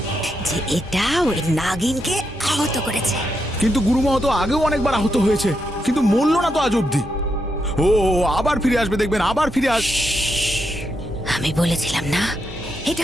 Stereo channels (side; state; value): both; normal; correlation 0.82